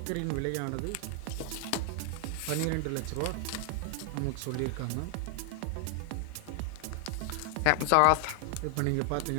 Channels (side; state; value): both; different; correlation 0.00